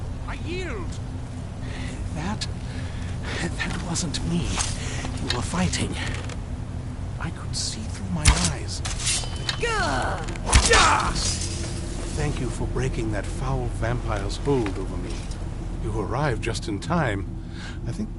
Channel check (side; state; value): both; identical; correlation 1.00